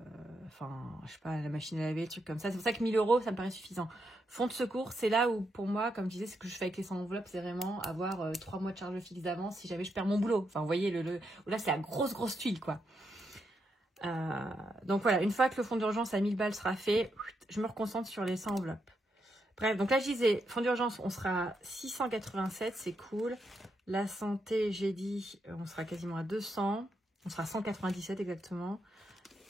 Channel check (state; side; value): normal; both; correlation 0.82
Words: Enfin, je sais pas, la machine à laver, le truc comme ça. C'est pour ça que 1000 €, ça me paraît suffisant. Fonds de secours, c'est là où, pour moi, comme je disais, ce que je fais avec les 100 enveloppes, c'est vraiment avoir 3 mois de charge fixe d'avance si jamais je perds mon boulot. Enfin, vous voyez, là, c'est la grosse tuile, quoi. Donc voilà, une fois que le fonds d'urgence à 1000 balles sera fait, je me reconcentre sur les 100 enveloppes. Bref, donc là, je disais, fonds d'urgence, on sera à 687, c'est cool. La santé, j'ai dit, on sera quasiment à 200. On sera à 197 exactement.